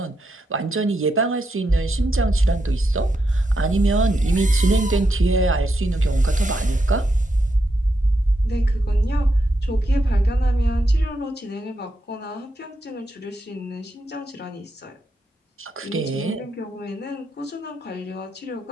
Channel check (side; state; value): both; normal; correlation 0.83